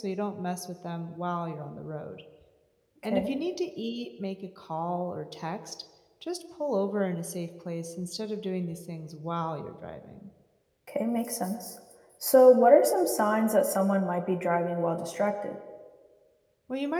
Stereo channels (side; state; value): both; identical; correlation 1.00